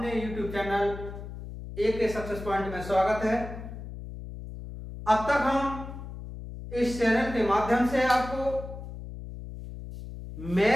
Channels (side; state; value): left; noise; hum, 11 dB below the sound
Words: YouTube channel AK success point में स्वागत है। अब तक हम इस चैनल के माध्यम से आपको